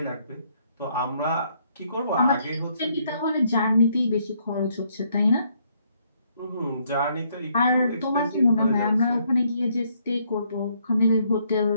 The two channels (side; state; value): both; inverted; correlation -0.70